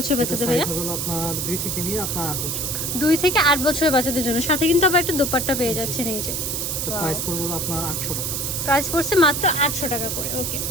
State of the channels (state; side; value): noise; right; hiss, 2 dB below the sound